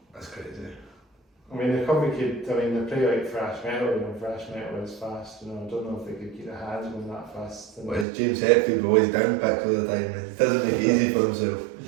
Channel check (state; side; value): drops out; left; at 8.1 s